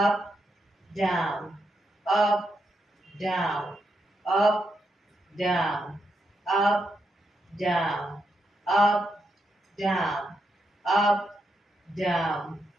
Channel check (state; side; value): normal; both; correlation 0.82